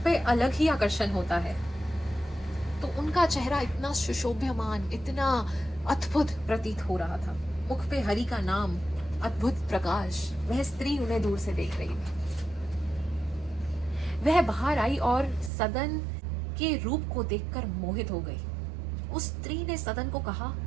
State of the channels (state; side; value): drops out; left; at 15.5 s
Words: पे अलग ही आकर्षण होता है, तो उनका चेहरा इतना सुशोभ्यमान, इतना अद्भुत प्रतीत हो रहा था। मुख पे हरि का नाम, अद्भुत प्रकाश। वह स्त्री उन्हें दूर से देख रही थी। वह बाहर आई और सदन के रूप को देखकर मोहित हो गई। उस स्त्री ने सदन को कहा,